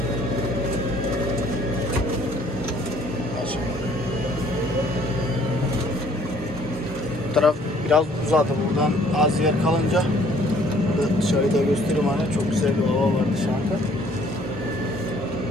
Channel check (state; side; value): normal; both; correlation 0.59